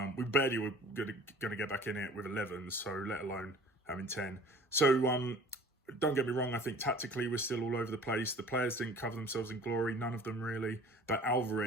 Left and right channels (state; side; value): normal; both; correlation 0.47